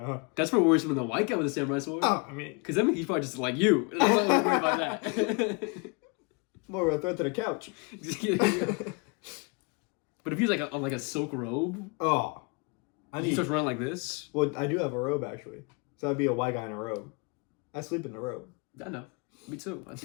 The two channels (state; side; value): quieter; right; 31.1 dB